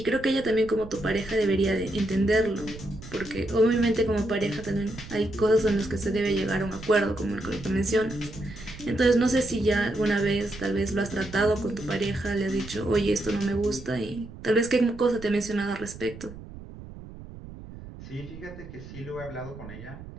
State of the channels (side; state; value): right; noise; rumble, 14 dB below the sound